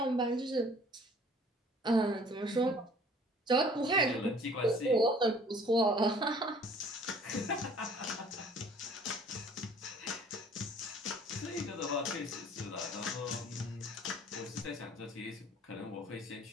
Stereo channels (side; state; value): both; normal; correlation 0.53